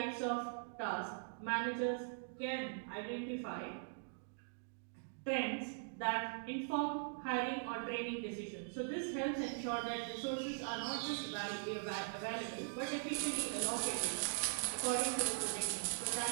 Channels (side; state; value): left; silent; digital silence